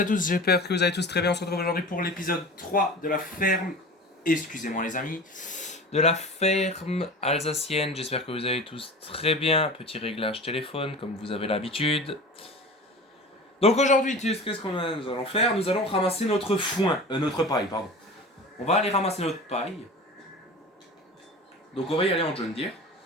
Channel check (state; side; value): normal; both; correlation 0.35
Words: à tous, j'espère que vous allez tous très bien. On se retrouve aujourd'hui pour l'épisode 3 de la ferme, excusez-moi les amis, de la ferme alsacienne. J'espère que vous allez tous très bien. Petit réglage téléphone comme vous avez l'habitude. Donc aujourd'hui, qu'est-ce qu'on nous allons faire? Nous allons ramasser notre foin, notre paille, pardon. On va aller ramasser notre paille. Donc on va y aller en John Deere.